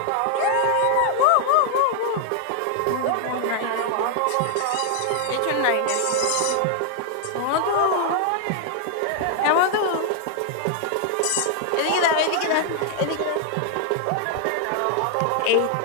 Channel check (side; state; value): both; different; correlation 0.00